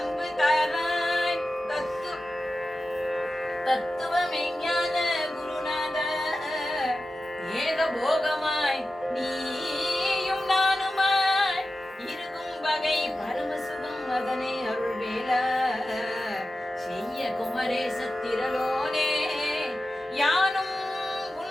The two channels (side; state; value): both; normal; correlation 0.93